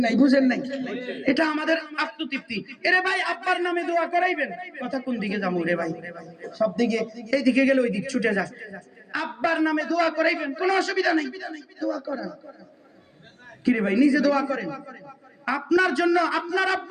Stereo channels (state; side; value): identical; both; correlation 1.00